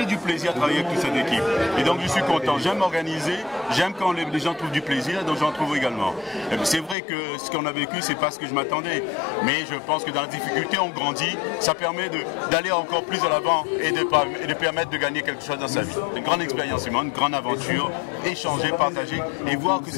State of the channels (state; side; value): drops out; right; at 7.0 s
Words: du plaisir à travailler avec toute cette équipe et donc je suis content. J'aime m'organiser, j'aime quand les gens trouvent du plaisir, donc j'en trouve également. C'est vrai que ce qu'on a vécu, c'est pas ce que je m'attendais, mais je pense que dans la difficulté, on grandit. Ça permet d'aller encore plus à l'avant et de permettre de gagner quelque chose dans sa vie. Une grande expérience humaine, une grande aventure, échanger, partager. Et voir que